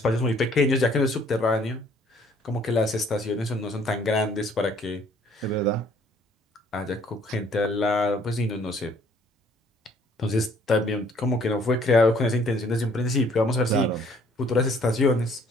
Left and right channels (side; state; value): both; normal; correlation 0.60